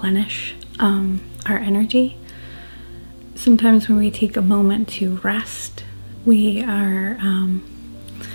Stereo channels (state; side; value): inverted; both; correlation -1.00